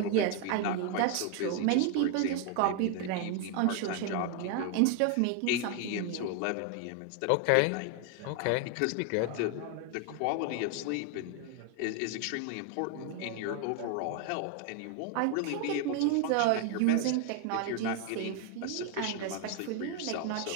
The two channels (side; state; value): both; different; correlation 0.01